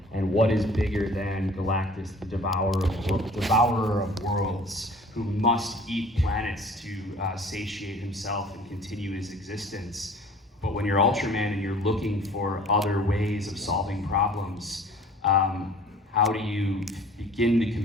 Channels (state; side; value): normal; both; correlation 0.49